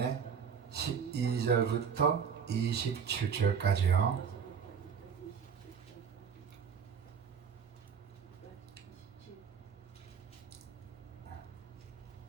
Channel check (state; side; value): quieter; left; 7.0 dB